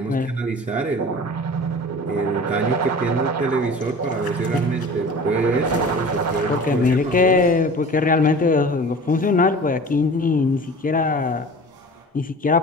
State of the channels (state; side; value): normal; both; correlation 0.40